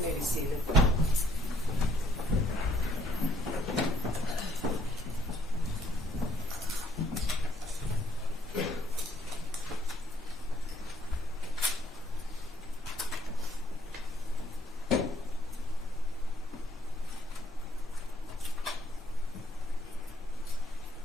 you may be seated.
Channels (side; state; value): both; normal; correlation 0.66